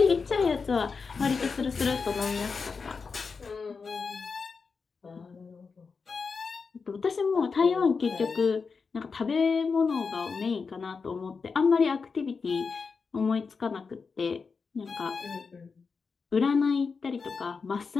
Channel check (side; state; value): right; quieter; 5.0 dB